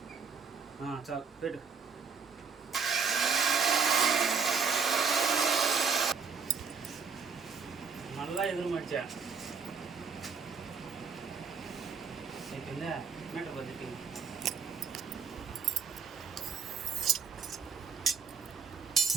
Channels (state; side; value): quieter; left; 5.6 dB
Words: చాలు పెట్టు. మళ్ళా ఎదురు మర్చా అయిపోయిందా? మెట పద్ధతి